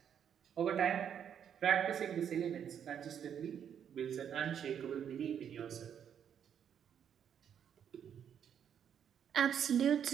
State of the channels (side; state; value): left; quieter; 8.6 dB